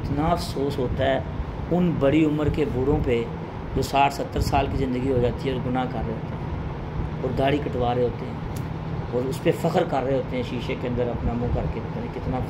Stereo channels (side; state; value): both; identical; correlation 1.00